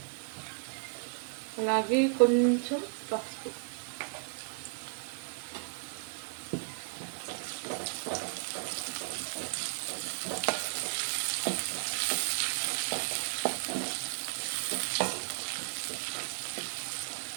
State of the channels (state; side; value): silent; left; 55 dB below the other